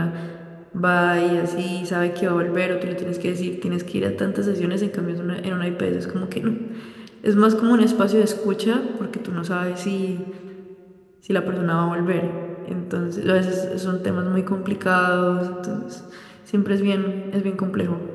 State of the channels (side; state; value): both; identical; correlation 1.00